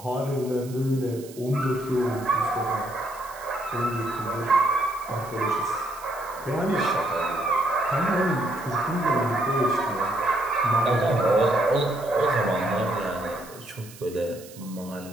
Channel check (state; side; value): noise; right; hiss, 19 dB below the sound